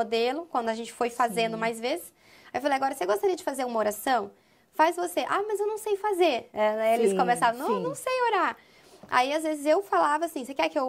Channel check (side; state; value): both; identical; correlation 1.00